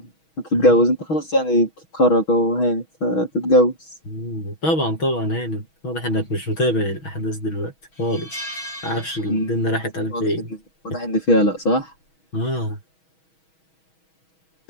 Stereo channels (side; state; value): right; late; 6.2 ms